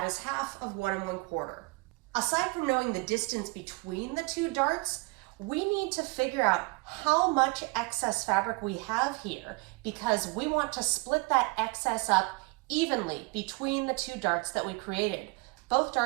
is half of 1 1/4. Aside from knowing the distance between the two darts, we need to figure out how much excess fabric we have here, because we want to split that excess up evenly between the two darts that we created. Both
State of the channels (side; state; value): left; quieter; 26.9 dB